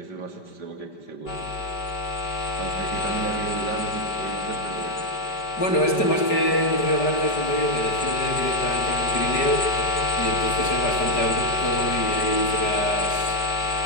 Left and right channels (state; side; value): late; right; 5.1 ms